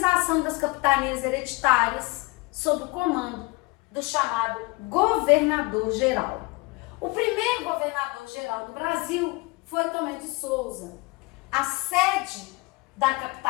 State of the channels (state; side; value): quieter; right; 25.6 dB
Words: das capitanias hereditárias sob o comando do chamado governador-geral. O primeiro governador-geral do Brasil foi Tomé de Souza. A sede da